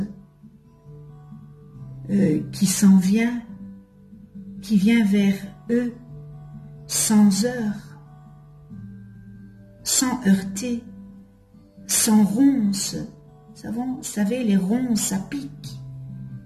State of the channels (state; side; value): identical; both; correlation 1.00